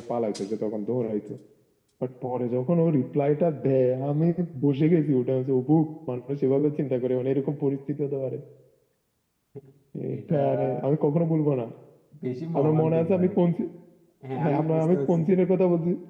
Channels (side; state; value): both; identical; correlation 1.00